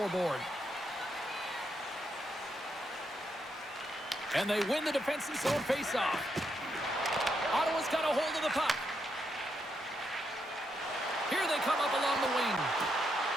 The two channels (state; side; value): normal; both; correlation 0.80